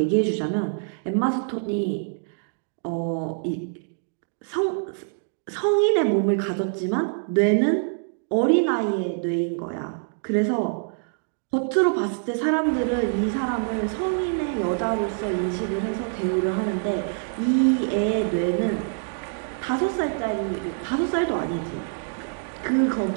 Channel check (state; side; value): silent; left; digital silence